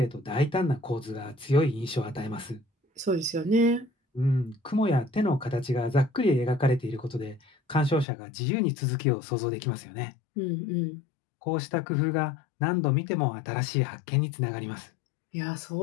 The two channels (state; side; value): drops out; right; at 8.1 s